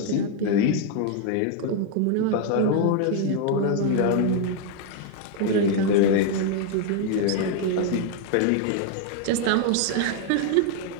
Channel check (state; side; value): different; both; correlation 0.01